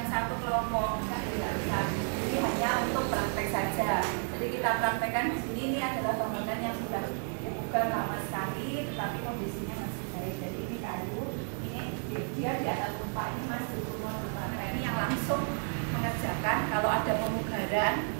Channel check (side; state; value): left; silent; 56 dB below the other